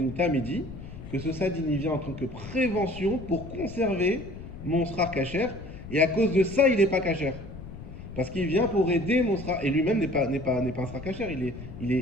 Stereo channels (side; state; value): left; noise; rumble, 12 dB below the sound